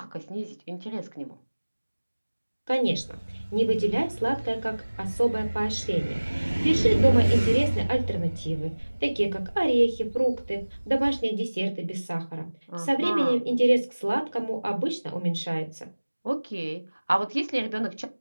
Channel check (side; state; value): both; inverted; correlation -1.00